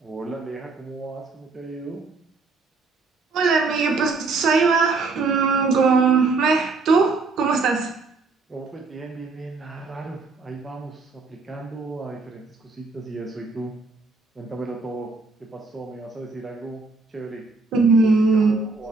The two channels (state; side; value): quieter; left; 4.0 dB